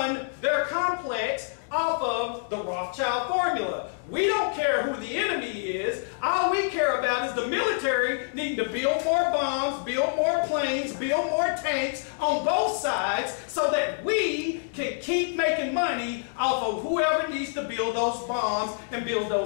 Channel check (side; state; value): right; silent; digital silence